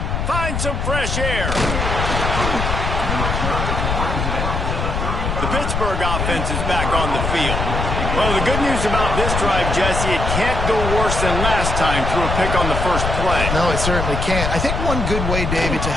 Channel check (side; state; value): left; noise; rumble, 2 dB below the sound